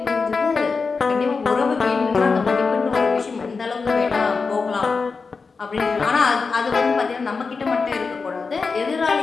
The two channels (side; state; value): right; quieter; 4.7 dB